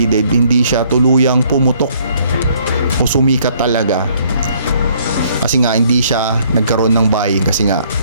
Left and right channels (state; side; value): inverted; both; correlation -0.63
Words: hindi siya tuluyang pumutok o sumikat talaga. Kasi nga hindi siya nagkaroon ng buying kasi nga